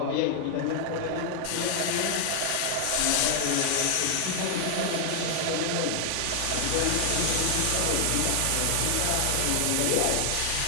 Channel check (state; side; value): different; both; correlation 0.00